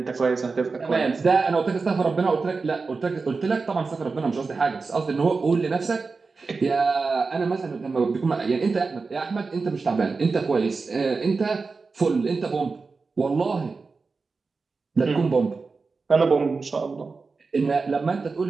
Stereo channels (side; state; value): left; quieter; 4.3 dB